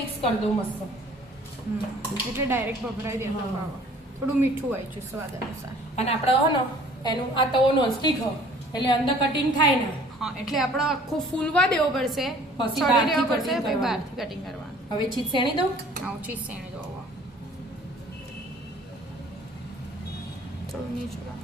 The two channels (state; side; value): normal; both; correlation 0.53